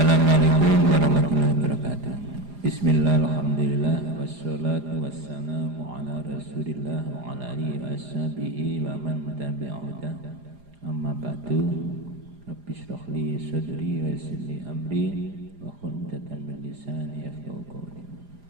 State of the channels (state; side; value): late; left; 4.9 ms